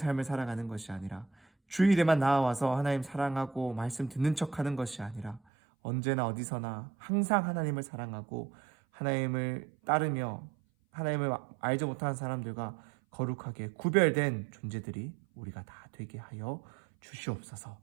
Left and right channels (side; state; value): left; drops out; at 5.4 s